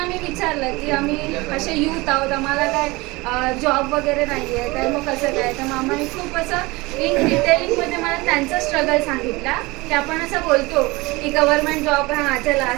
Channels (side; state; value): left; quieter; 22.9 dB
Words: मी विचारलं की आम्ही असे यूथ आहोत, आम्हाला काय जॉब वगैरे नाही आहे, तर मग कसं काय. तर मामाने खूप असं इन डिटेलिंगमध्ये मला त्यांचा स्ट्रगल सांगितला की आपण असं बोलतो की गव्हर्नमेंट जॉब हां चला